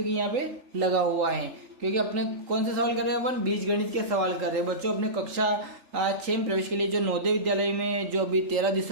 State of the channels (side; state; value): left; late; 3.4 ms